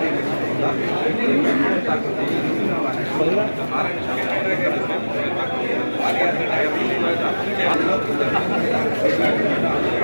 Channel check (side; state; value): both; inverted; correlation -1.00